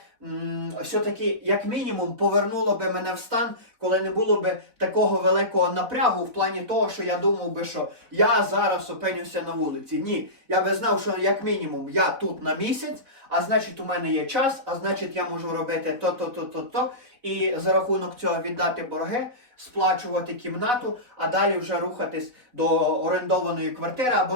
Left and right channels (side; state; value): left; late; 4.0 ms